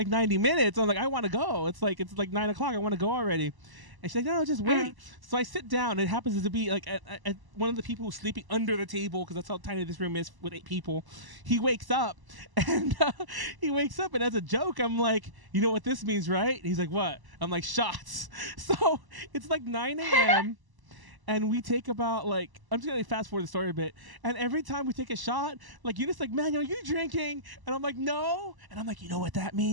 90 minutes. I'm like, I want to go. It's like 9 o'clock. I want to go already. And she's like, no, just wait. So I sit down. It happens to be like at one of the people who's sleeping under the table, because that's how tiny this room is with 8 people. He wakes up, and as a joke, I'm like, you know what this means, right? And he's like, what? I'm like, shots. So it's like 9 a.m., and we take about like, I'm just gonna fast forward the story a bit. And every time we take a shot, like Eunice like, Manuel, are you drinking? And I'm like, no. And I'm like, you know what that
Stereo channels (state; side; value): late; left; 1.0 ms